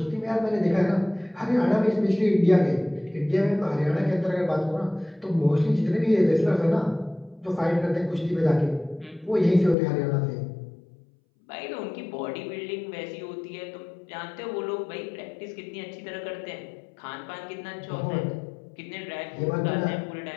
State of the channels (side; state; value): right; drops out; at 9.8 s